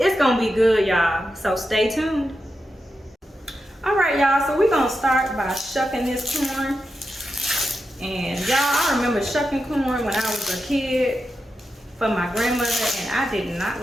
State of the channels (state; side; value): normal; both; correlation 0.89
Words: gonna be good, y'all, so stay tuned. All right, y'all, so we're gonna start by shucking this corn. And y'all, I remember shucking corn when I was a kid for my grandmother, and I did not